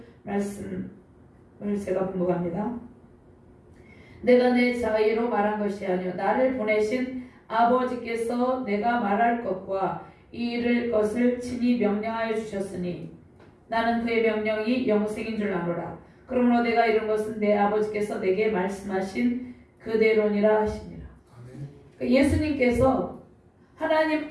말씀을 제가 분목합니다. 내가 내 자의로 말한 것이 아니요 나를 보내신 아버지께서 내가 말할 것과 이를 것을 친히 명령하여 주셨으니 나는 그의 명령이 영생인 줄 아노라. 그러므로 내가 이룬 것은 내 아버지께서 내게 말씀하신 그대로니라 하십니다. 예수님께서 하나님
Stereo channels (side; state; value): both; identical; correlation 1.00